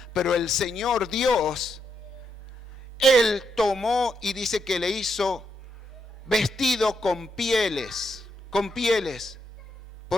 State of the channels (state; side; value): normal; both; correlation 0.80